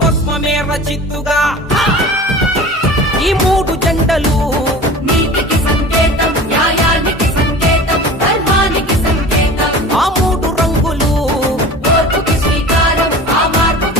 భస్మమే రచిత్తుగా ఈ మూడు జెండలు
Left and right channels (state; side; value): normal; both; correlation 0.38